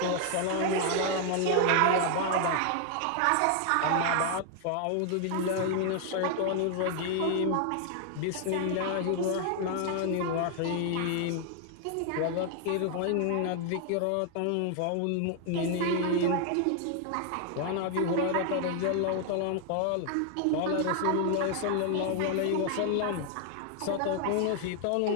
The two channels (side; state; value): both; different; correlation 0.00